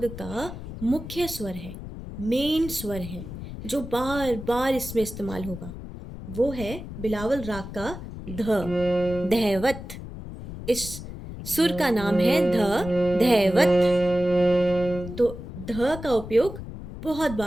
का मुख्य स्वर है, मेन स्वर है, जो बार बार इसमें इस्तेमाल होगा। वो है बिलावल राग का ध, धैवत। इस सुर का नाम है ध, धैवत। तो ध का उपयोग बहुत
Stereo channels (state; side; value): noise; left; rumble, 11 dB below the sound